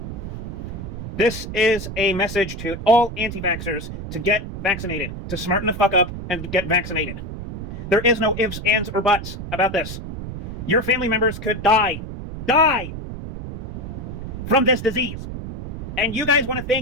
This is a message to all anti-vaxxers to get vaccinated, to smarten the fuck up and get vaccinated. There is no ifs, ands, or buts about this. Your family members could die from this disease. And you guys want to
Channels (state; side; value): noise; right; rumble, 8 dB below the sound